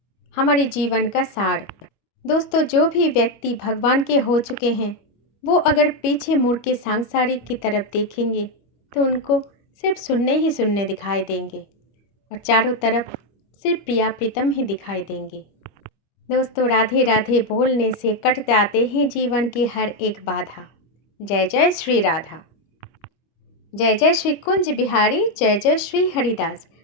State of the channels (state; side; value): late; right; 26 ms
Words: हमारे जीवन का सार। दोस्तों जो भी व्यक्ति भगवान के हो चुके हैं, वो अगर पीछे मुड़ के सांसारिक की तरफ देखेंगे तो उनको सिर्फ सुनने ही सुनने दिखाई देंगे और चारों तरफ सिर्फ प्रिया प्रीतम ही दिखाई देंगे। दोस्तों राधे राधे बोलने से कट जाते हैं जीवन की हर एक बाधा। जय जय श्री राधा, जय जय श्री कुंज बिहारी, जय जय श्री हरिदास।